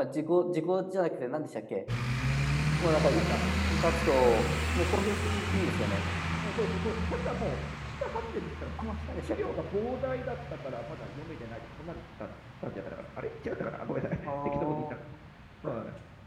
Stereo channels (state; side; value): identical; both; correlation 1.00